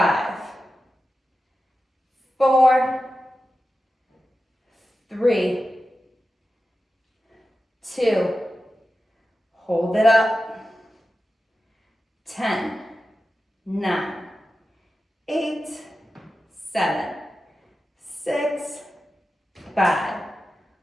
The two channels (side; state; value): both; normal; correlation 0.93